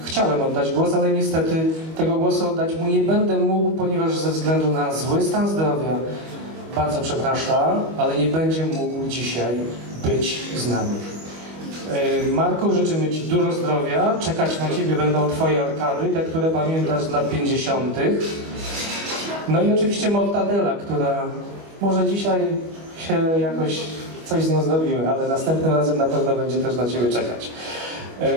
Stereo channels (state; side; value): late; left; 25 ms